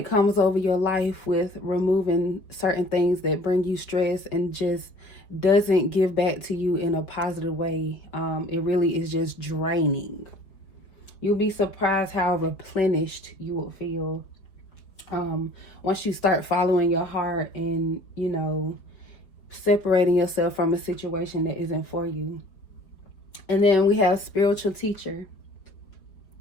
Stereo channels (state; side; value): late; right; 4.8 ms